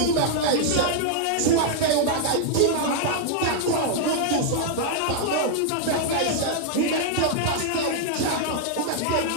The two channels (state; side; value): different; both; correlation -0.01